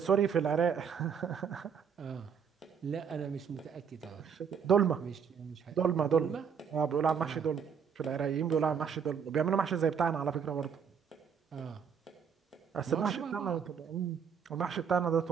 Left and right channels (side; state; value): left; quieter; 7.0 dB